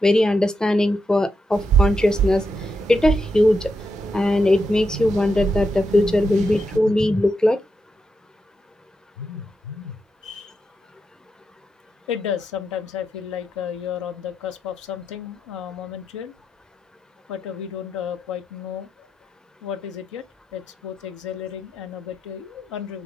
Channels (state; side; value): normal; both; correlation 0.85